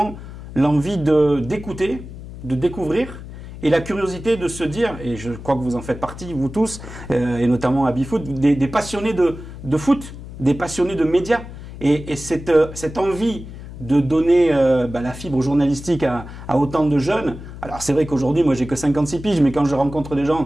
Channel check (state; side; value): noise; left; hum, 13 dB below the sound